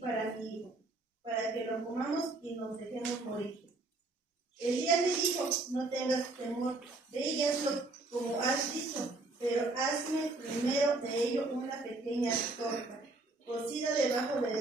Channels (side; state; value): left; quieter; 3.2 dB